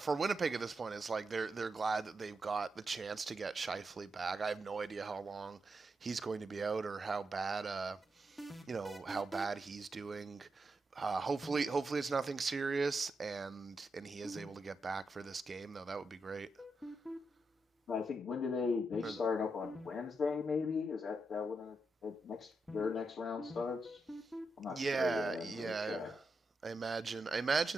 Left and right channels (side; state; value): both; normal; correlation 0.85